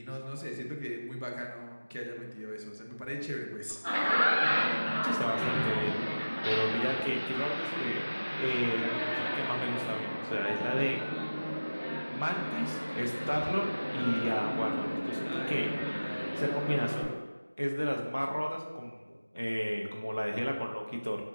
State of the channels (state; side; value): inverted; both; correlation -1.00